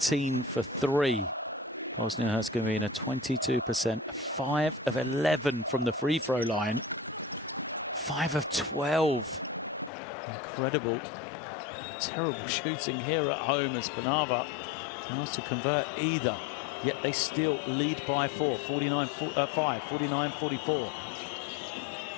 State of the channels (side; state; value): right; drops out; at 9.9 s